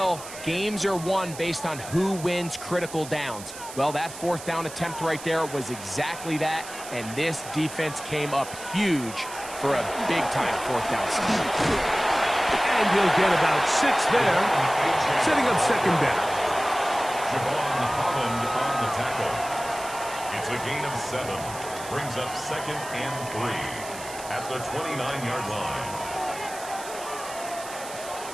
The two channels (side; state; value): right; noise; hiss, 13 dB below the sound